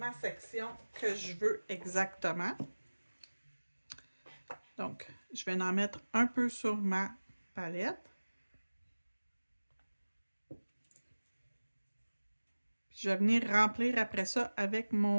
section que je veux exactement. Donc, je vais en mettre un peu sur ma palette. Je vais venir remplir après ça avec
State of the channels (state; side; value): inverted; both; correlation -1.00